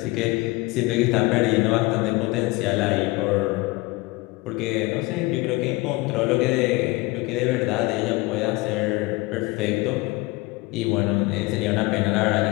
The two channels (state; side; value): quieter; right; 22.2 dB